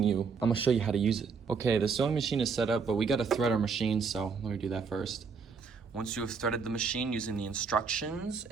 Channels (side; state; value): left; quieter; 5.3 dB